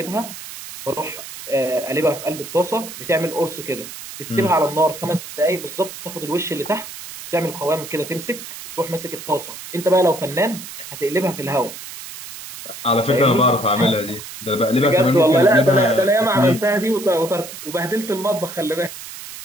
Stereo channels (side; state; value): right; noise; hiss, 12 dB below the sound